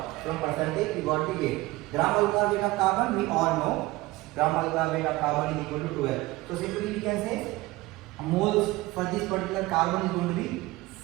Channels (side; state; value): left; quieter; 20.0 dB